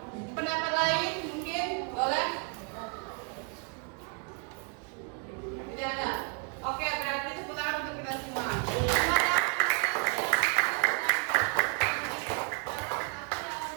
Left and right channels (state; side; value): quieter; left; 37.8 dB